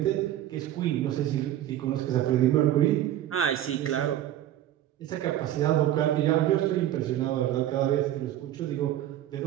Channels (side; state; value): left; quieter; 12.5 dB